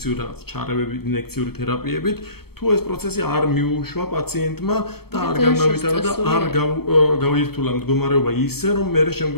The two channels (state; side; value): late; right; 0.96 ms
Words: რაღაც ჩარევებით, ინექციური თერაპიებით, თუ ეს პროცესი არ მიუშვა პაციენტმა და არ განავითარა და არ გაუირთულა მდგომარეობა ისე, რომ მე